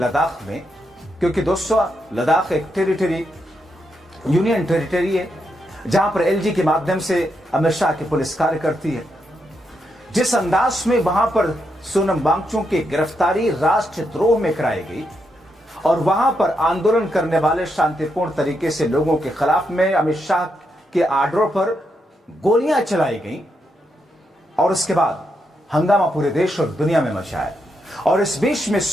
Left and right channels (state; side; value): normal; both; correlation 0.82